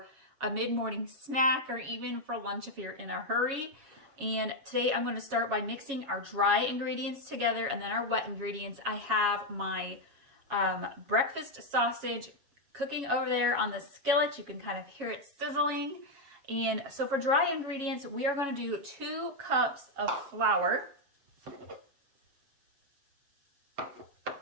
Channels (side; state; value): left; late; 7.3 ms